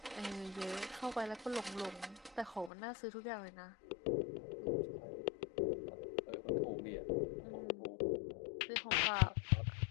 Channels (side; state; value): right; drops out; at 2.7 s